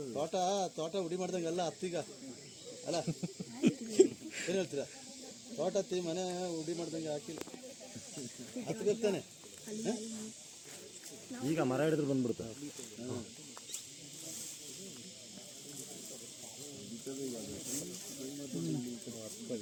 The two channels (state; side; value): identical; both; correlation 1.00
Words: ತೋಟ ಉಡಿ ಮಾಡ್ದಂಗೆ ಎಲ್ಲ ಹತ್ತೀಗ ಅಲ್ಲ ಏನು ಹೇಳ್ತೀರಾ ತೋಟ ಹತ್ತಿ ಮನೆ ಉಡಿ ಮಾಡ್ದಂಗೆ ಹಾಕಿಲ್ಲ ಹತ್ತಿರ್ತಾನೆ ಈಗ ಮರ ಹಿಡಿದ್ರು ಬಂದ್ಬಿಡ್ತಾರೆ